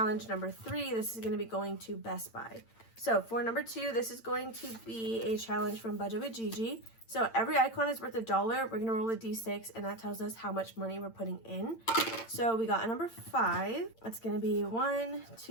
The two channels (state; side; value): late; right; 8.9 ms